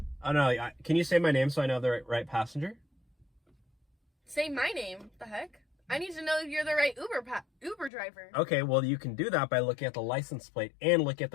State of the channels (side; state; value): right; drops out; at 7.9 s